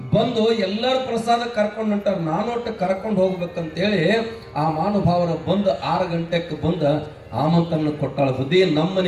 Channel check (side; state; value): both; identical; correlation 1.00